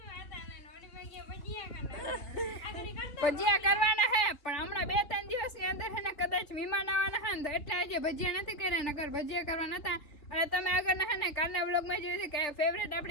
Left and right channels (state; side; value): late; right; 3.4 ms